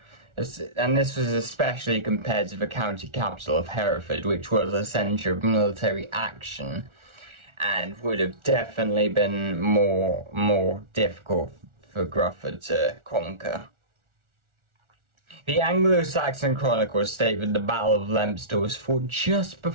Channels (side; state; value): left; late; 1.4 ms